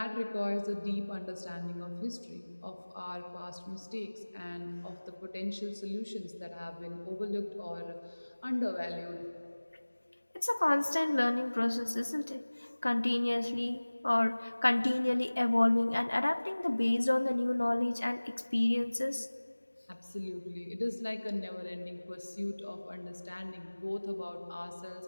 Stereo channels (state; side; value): inverted; both; correlation -1.00